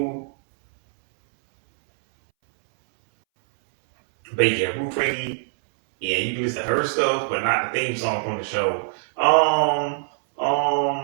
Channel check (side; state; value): left; silent; 64 dB below the other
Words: but yeah, Ruth Randy. Yeah, you can listen to her stuff, but not the theme song from the show.